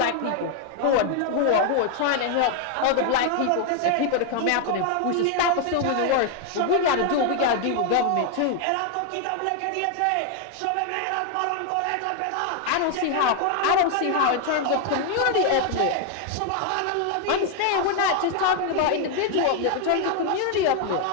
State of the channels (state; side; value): different; both; correlation 0.01